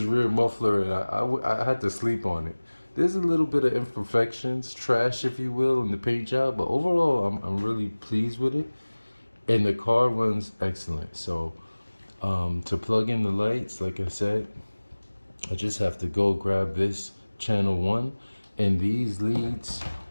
rear muffler, and I had to sleep on it. There's a little bit of imperfections, trash if you will, in the paint job, but overall I'm really pleased with it, and the car runs excellent. So to plug in the lights, like I said, I just have to go grab this channel 1, and these leads,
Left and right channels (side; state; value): both; inverted; correlation -1.00